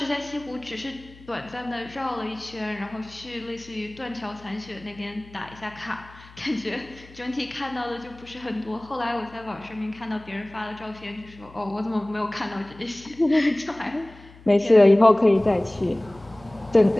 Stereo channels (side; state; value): left; noise; hum, 22 dB below the sound